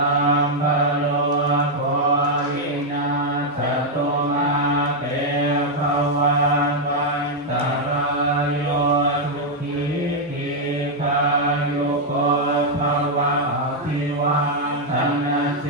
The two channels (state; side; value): normal; both; correlation -0.01